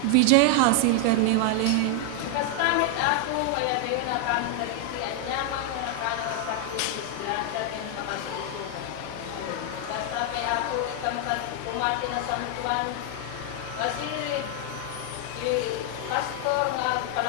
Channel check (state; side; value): different; both; correlation 0.00